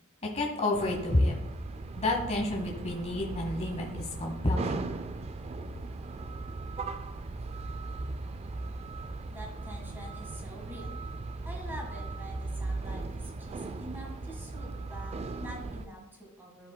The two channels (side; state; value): both; normal; correlation 0.66